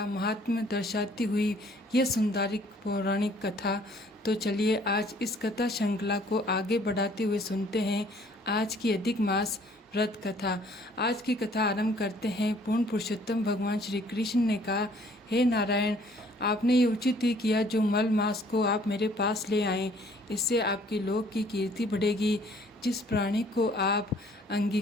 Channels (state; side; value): normal; both; correlation 0.59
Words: महात्म्य दर्शाती हुई यह सुंदरिक पौराणिक कथा। तो चलिए आज इस कथा श्रृंखला को आगे बढ़ाते हुए सुनते हैं आज की अधिक मास व्रत कथा। आज की कथा आरंभ करते हैं। पूर्ण पुरुषोत्तम भगवान श्री कृष्ण ने कहा, हे नारायण, आपने ये उचित ही किया जो मल मास को आप मेरे पास ले आए। इससे आपकी लोक की कीर्ति बढ़ेगी। जिस प्राणी को आप